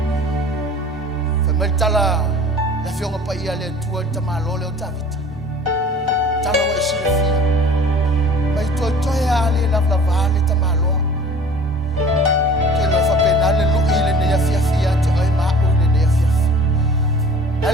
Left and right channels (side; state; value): both; normal; correlation 0.46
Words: Fa meltala la fionga pa ia le tua tamalo le o tavita. Tala wa silefia. Mai totoya ale la vale tamalo. Ke lo fa penale lu ile ne Afiafi ate ai ma o ne Afiafi.